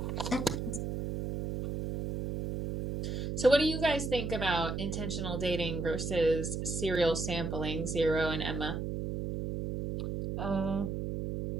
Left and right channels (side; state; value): right; noise; hum, 3 dB below the sound